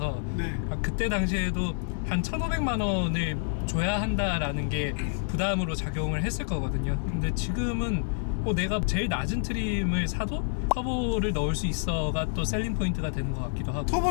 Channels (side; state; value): right; silent; 59 dB below the other